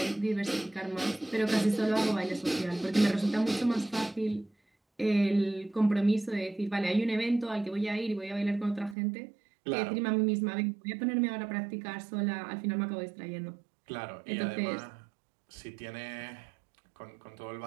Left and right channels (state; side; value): drops out; left; at 9.0 s